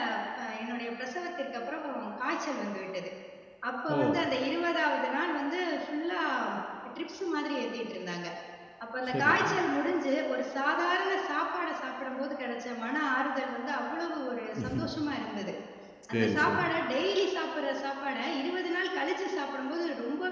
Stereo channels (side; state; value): both; identical; correlation 1.00